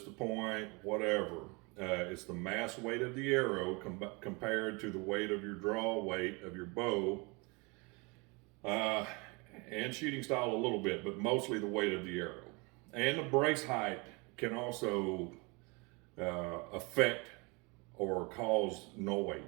the point, whatever. It's the mass weight of the arrow compared to the weight of your draw weight of your bow, and shooting style a little bit, but mostly the weight of the arrow. And the brace height can also affect or cause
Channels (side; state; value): left; quieter; 28.8 dB